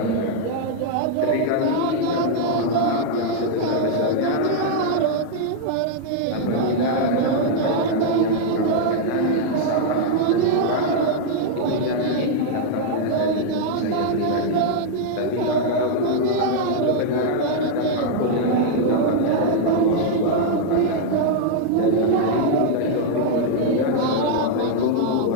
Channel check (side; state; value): both; different; correlation -0.01